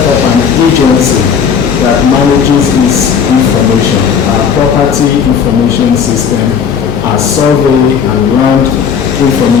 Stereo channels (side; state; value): right; quieter; 6.9 dB